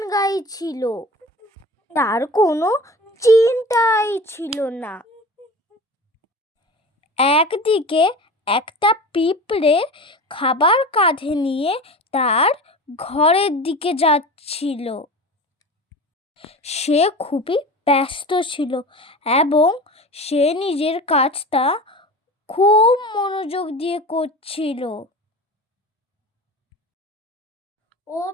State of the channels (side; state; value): both; normal; correlation 0.34